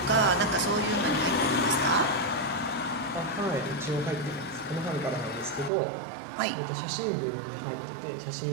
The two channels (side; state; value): left; drops out; at 5.7 s